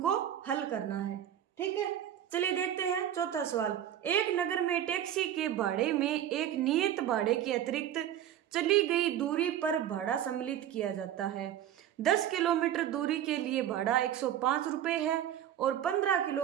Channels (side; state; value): left; quieter; 10.9 dB